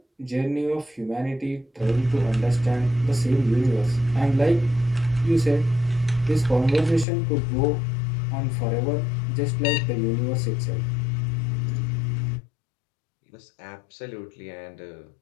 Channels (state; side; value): drops out; right; at 7.1 s